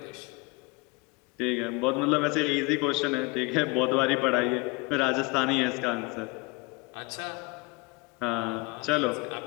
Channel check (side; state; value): right; quieter; 26.0 dB